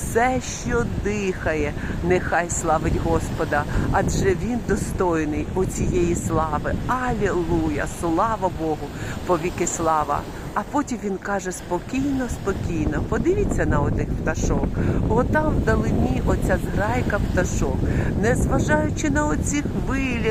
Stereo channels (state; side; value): identical; both; correlation 1.00